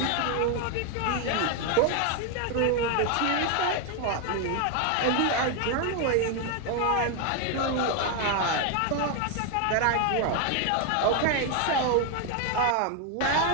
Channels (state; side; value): different; both; correlation 0.01